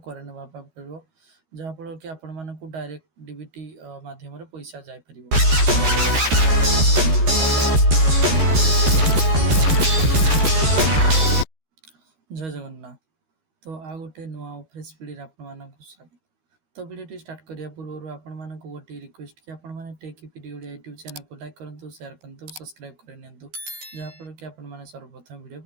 ना पड़ो जहाँफल कि आपण मानक डायरेक्ट डीबीटी माध्यम पैसा जापर। जय जगन्नाथ। तो आ गोटे नुआ फ्रेश पीढ़ी आपण मानक स्वागत। तो वीडियो स्टार्ट करिया पूर्व आपण मानक गोटे रिक्वेस्ट कि आपण माने tech PD Odia YouTube channel को लाइक करंतु शेयर करंतु सब्सक्राइब कर नियंतु जहाँफल कि आपण माने सर्वप्रथम वीडियो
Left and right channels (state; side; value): late; left; 14 ms